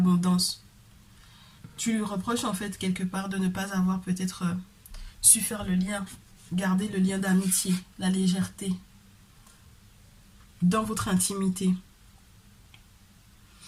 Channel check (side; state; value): both; identical; correlation 1.00